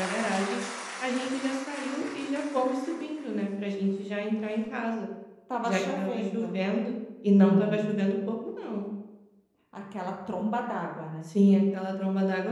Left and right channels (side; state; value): both; identical; correlation 1.00